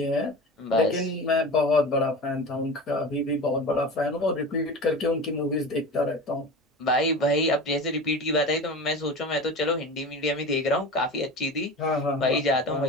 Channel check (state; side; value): normal; both; correlation 0.32